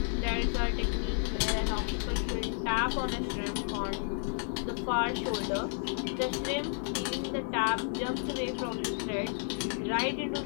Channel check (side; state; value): right; silent; 57 dB below the other